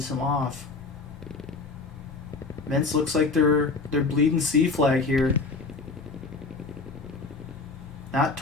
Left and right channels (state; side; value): quieter; right; 3.9 dB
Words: him off. MINC looks like they're bleeding C flag here. Not